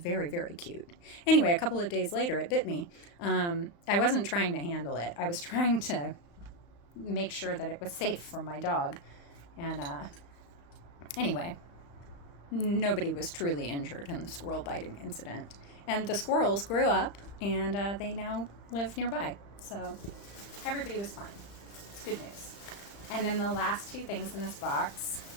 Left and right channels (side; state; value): right; late; 35 ms